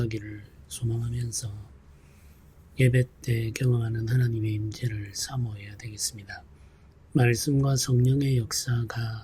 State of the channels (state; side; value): identical; both; correlation 1.00